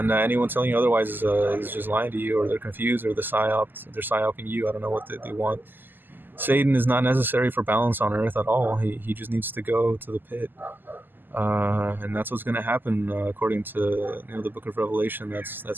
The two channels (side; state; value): left; late; 0.091 ms